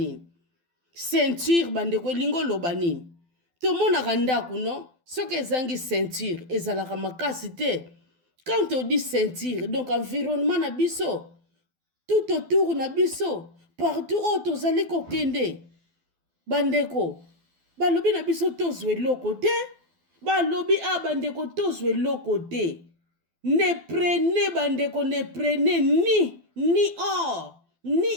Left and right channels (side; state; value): left; late; 12 ms